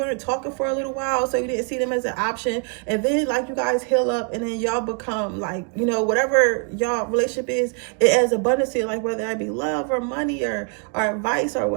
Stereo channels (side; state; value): left; quieter; 39.1 dB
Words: talking for a little while, so you didn't see them as an option, and then like you guys heal up, and then y'all become like, whatever y'all relationship is, it adds abundance to your life, whether that be love or money or advice or